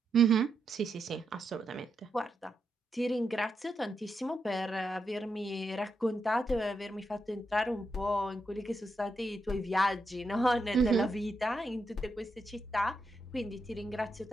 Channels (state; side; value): normal; both; correlation 0.84